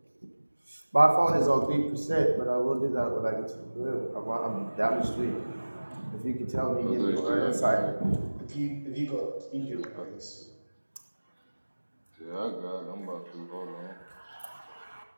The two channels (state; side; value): inverted; both; correlation -1.00